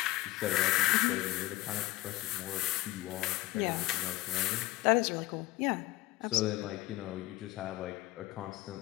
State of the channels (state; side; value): quieter; right; 18.2 dB